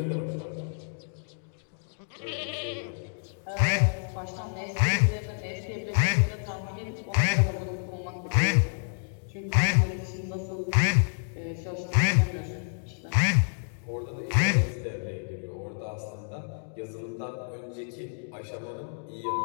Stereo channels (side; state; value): right; silent; digital silence